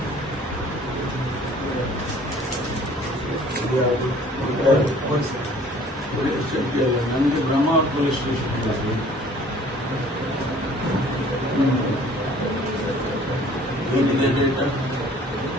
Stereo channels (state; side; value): normal; both; correlation 0.52